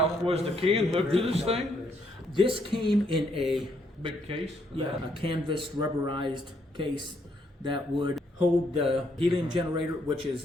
was the can hooked to this thing? This came in a Big case? a canvas rubberized case that would hold the helium generator, which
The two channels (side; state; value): both; normal; correlation 0.72